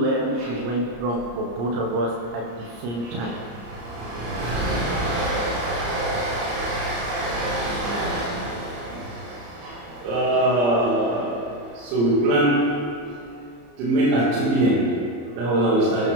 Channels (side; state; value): left; late; 34 ms